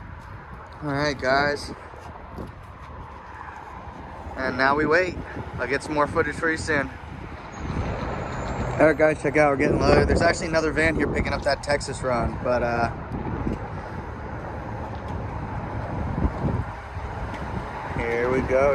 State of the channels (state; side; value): identical; both; correlation 1.00